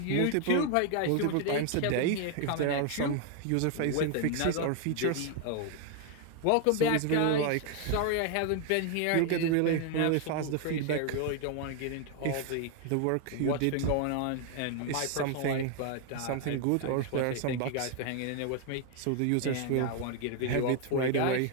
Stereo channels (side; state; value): both; different; correlation 0.00